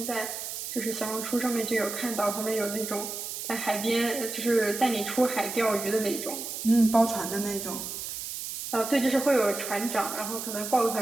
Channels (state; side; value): noise; right; hiss, 6 dB below the sound